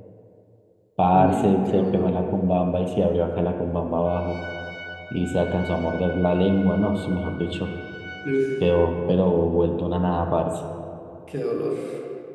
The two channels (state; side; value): identical; both; correlation 1.00